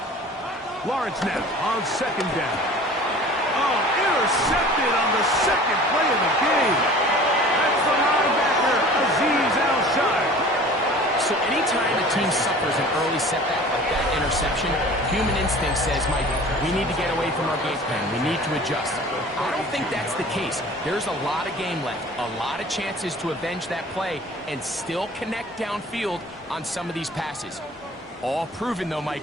Lawrence now on second down. Oh, intercepted on the second play of the game. That's the linebacker, Azeez Al-Shire. So anytime a team suffers an early setback like that interception, human instinct says, Mike, we need to get away from our game plan. We need to adjust. I don't think that's the case. There's a lot of game left, a lot of chances to avenge that play and still connect downfield on some of these passes. All proven, though,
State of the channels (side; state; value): both; normal; correlation 0.44